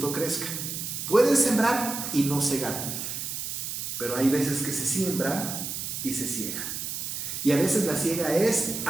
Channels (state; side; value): noise; right; hiss, 5 dB below the sound